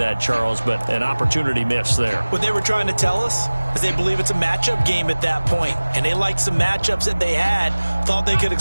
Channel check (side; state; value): both; inverted; correlation -1.00